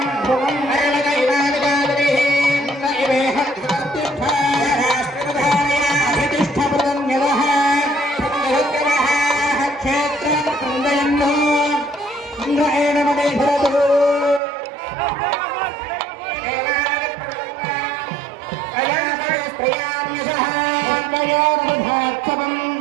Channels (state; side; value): drops out; left; at 14.4 s